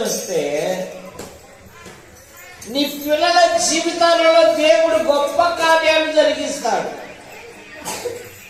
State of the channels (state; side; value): identical; both; correlation 1.00